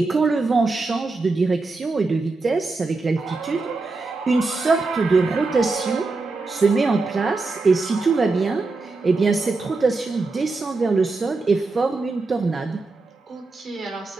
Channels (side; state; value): left; quieter; 3.7 dB